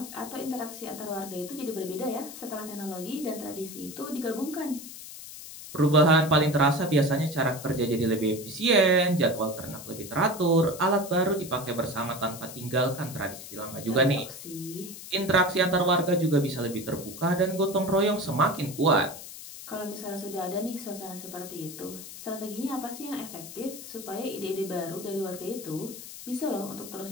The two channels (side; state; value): left; noise; hiss, 13 dB below the sound